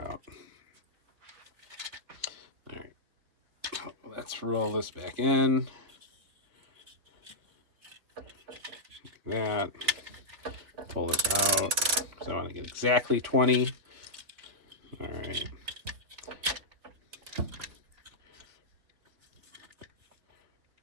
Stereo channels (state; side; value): late; left; 3.8 ms